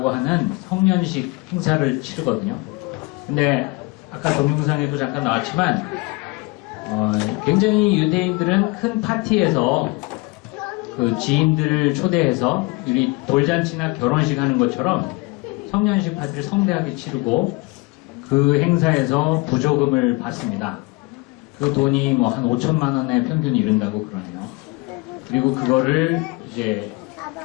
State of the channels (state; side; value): quieter; right; 25.2 dB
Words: 하는 성년식 행사를 치르거든요. 근데 아까 동영상에도 잠깐 나왔지만 굉장히 유대인들은 큰 파티에서 그 지인들을 초대해서 우리 돌잔치나 결혼식 하는 것처럼 성년식 파티를 성대하게 치르고 그 행사에서 부조금을 받습니다. 그 돈이 뭐 한 5천만 원에 평균 이른다고 그러네요. 그리고 그거를 이제